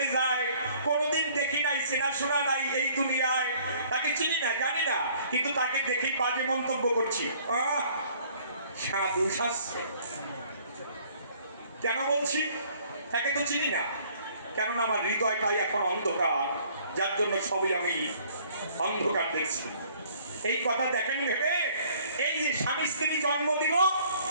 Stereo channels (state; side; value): inverted; both; correlation -0.57